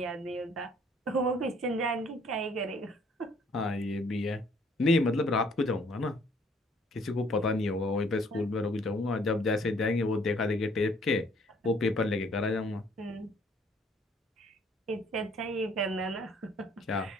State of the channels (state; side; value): normal; both; correlation 0.61